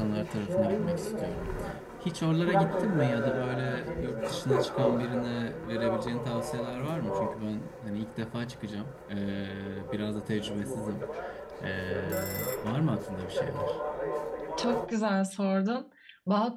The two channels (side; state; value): both; identical; correlation 1.00